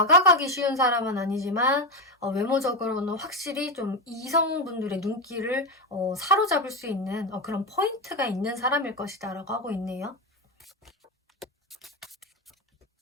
쉬운 사람은 아니지만 외모적으로는 확실히 좀 이성분들의 눈길을 사로잡을 수 있는 그런 포인트가 있는 사람일 것이다 라고 하고 있네요.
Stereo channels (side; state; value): both; normal; correlation 0.12